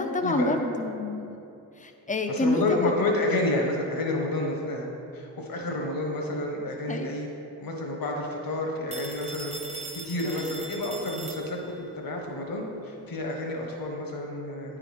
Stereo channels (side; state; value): both; normal; correlation 0.16